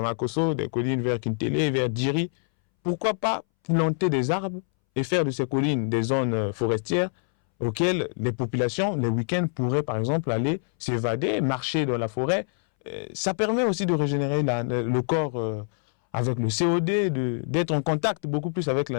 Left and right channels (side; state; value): right; silent; 61 dB below the other